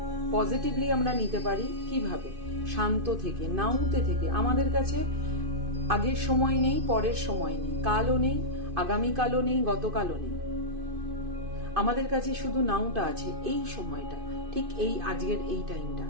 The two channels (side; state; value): left; late; 2.5 ms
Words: পজিটিভলি আমরা নিতে পারি কিভাবে? শান্ত থেকে, নাউতে থেকে। আমাদের কাছে আগের সময় নেই, পরের সময় নেই, কালও নেই, আগামীকালও নেই, গতকালও নেই। আমাদের কাছে শুধু নাউটা আছে, এই সময়টা, ঠিক এই আজকের এই টাইমটা।